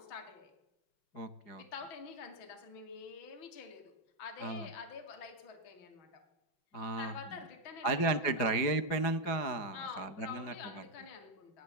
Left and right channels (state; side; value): late; right; 4.9 ms